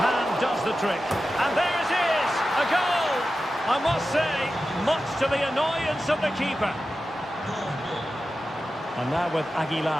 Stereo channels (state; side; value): normal; both; correlation 0.93